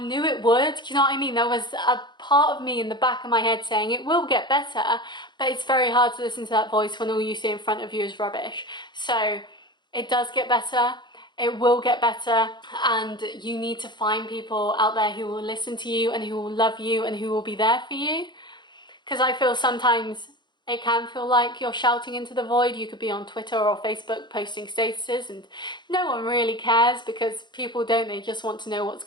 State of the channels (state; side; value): late; right; 0.22 ms